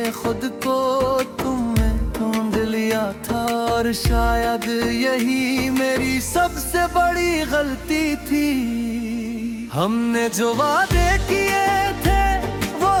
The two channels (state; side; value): identical; both; correlation 1.00